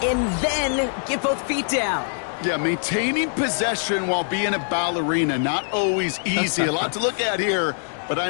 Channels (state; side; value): silent; right; digital silence